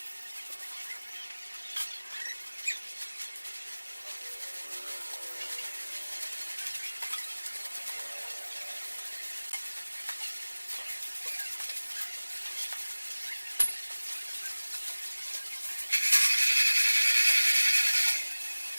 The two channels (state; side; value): inverted; both; correlation -1.00